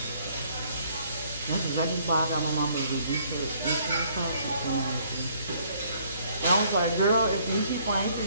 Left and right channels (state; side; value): inverted; both; correlation -0.64